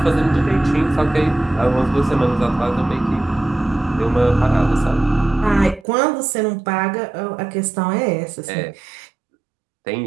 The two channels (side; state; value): left; drops out; at 5.9 s